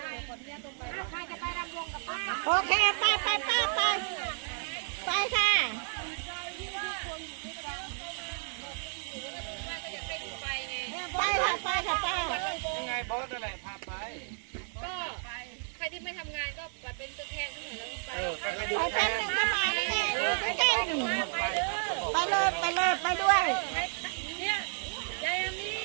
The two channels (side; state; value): left; silent; 56 dB below the other